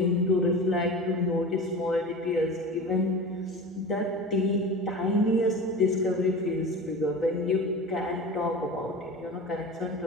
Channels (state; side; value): normal; both; correlation 0.32